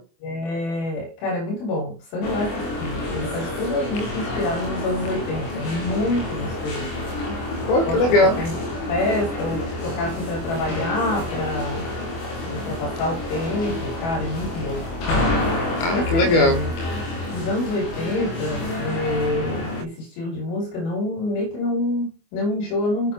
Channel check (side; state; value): right; late; 24 ms